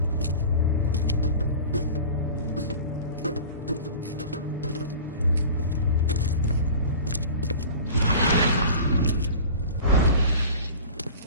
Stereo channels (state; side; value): inverted; both; correlation -0.38